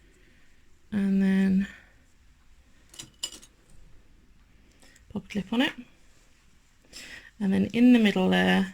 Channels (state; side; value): identical; both; correlation 1.00